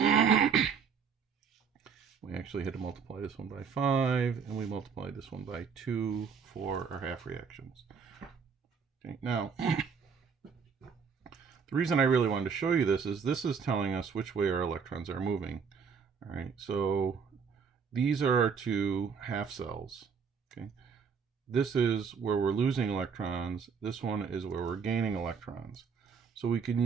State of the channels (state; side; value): quieter; left; 6.2 dB